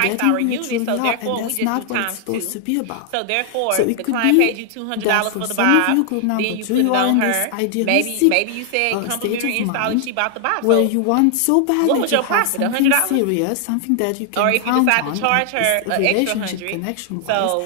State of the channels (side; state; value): both; different; correlation 0.00